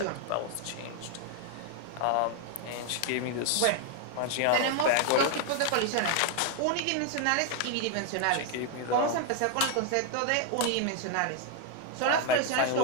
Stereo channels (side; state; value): both; different; correlation 0.01